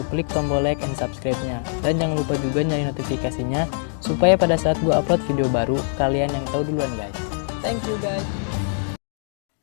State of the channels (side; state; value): right; silent; digital silence